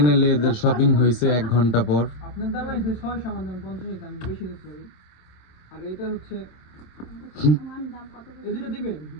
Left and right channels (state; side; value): late; right; 26 ms